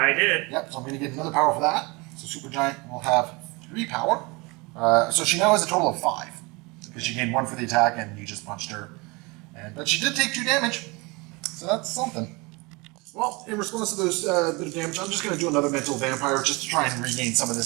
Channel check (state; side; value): quieter; left; 26.2 dB